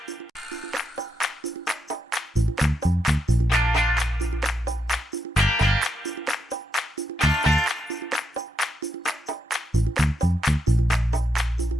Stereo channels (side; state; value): both; normal; correlation 0.82